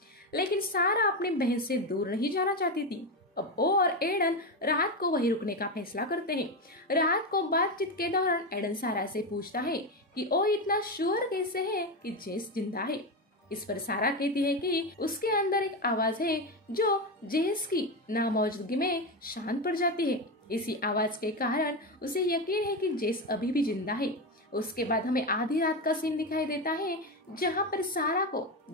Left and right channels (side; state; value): both; normal; correlation 0.14